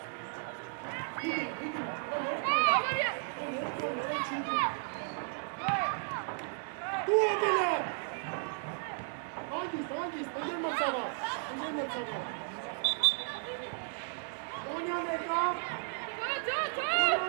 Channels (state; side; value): silent; left; 55 dB below the other